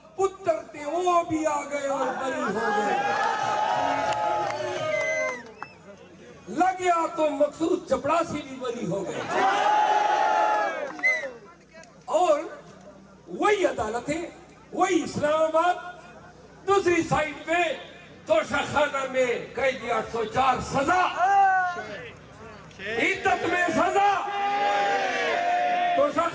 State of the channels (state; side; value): identical; both; correlation 1.00